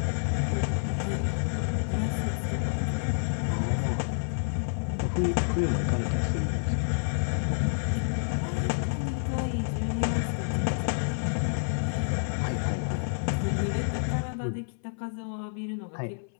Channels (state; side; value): silent; right; 59 dB below the other